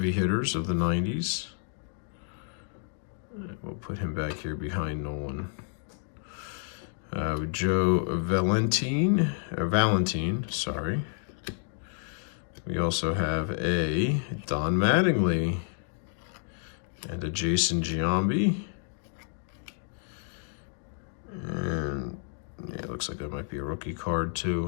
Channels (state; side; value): silent; right; 58 dB below the other